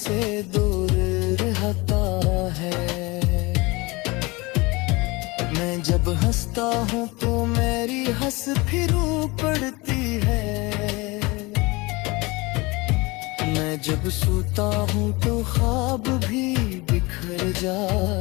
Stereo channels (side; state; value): right; quieter; 24.0 dB